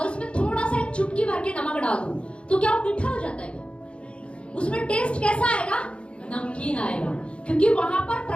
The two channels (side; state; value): right; late; 0.058 ms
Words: उसमें थोड़ा सा एक चुटकी भर के नमक डाल दो, तो क्या वो मीठा हो जाता है क्या? उसमें टेस्ट कैसा आएगा? नमकीन आएगा, क्योंकि वहां पर